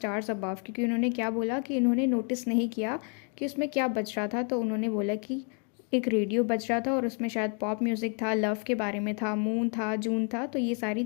अबव, क्योंकि उन्होंने क्या बोला कि इन्होंने नोटिस नहीं किया कि उसमें क्या बज रहा था। तो उन्होंने बोला कि एक रेडियो बज रहा था और उसमें शायद पॉप म्यूज़िक था, लव के बारे में था, मून था, जून था, तो ये सारी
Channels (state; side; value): quieter; right; 39.7 dB